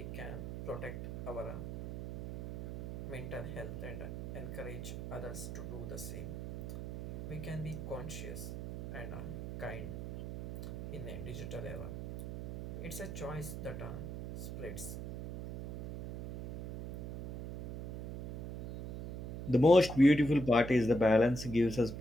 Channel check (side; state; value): right; noise; hum, 8 dB below the sound